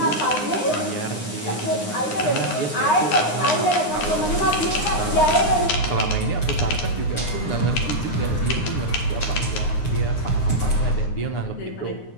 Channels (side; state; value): right; late; 9.7 ms